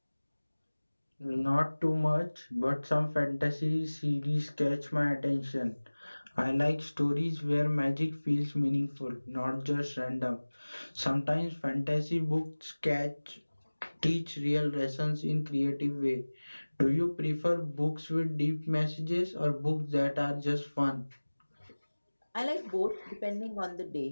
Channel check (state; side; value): inverted; both; correlation -1.00